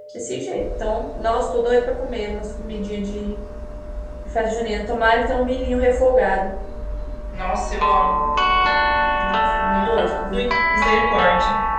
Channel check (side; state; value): both; identical; correlation 1.00